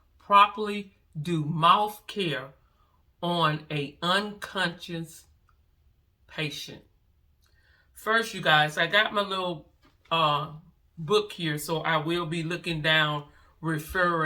properly do mouth care on an unconscious patient. First, you guys, I got my little book here, so I will be looking down,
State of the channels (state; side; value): identical; both; correlation 1.00